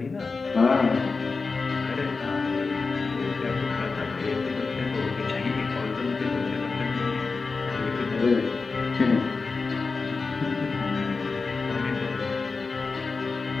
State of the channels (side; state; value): right; quieter; 4.3 dB